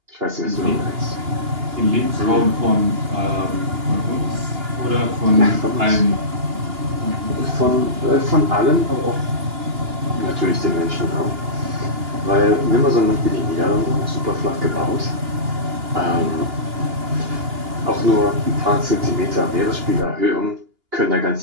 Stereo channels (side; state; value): left; late; 2.8 ms